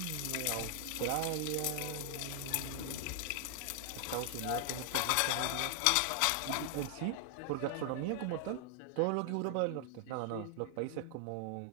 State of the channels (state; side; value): different; both; correlation 0.00